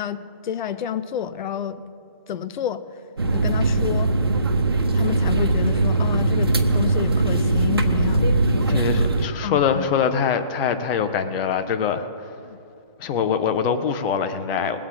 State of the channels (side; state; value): both; inverted; correlation -0.53